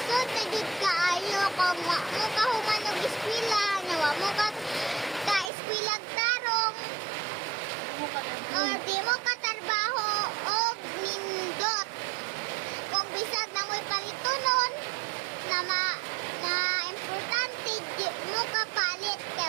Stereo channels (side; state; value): left; drops out; at 5.5 s